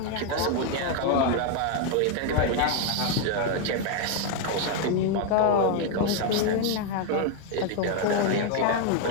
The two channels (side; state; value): both; different; correlation 0.01